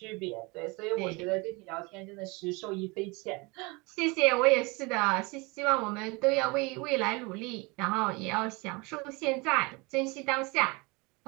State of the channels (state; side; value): quieter; left; 26.9 dB